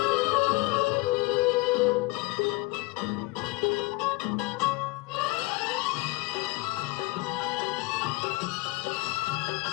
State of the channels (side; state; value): right; quieter; 22.9 dB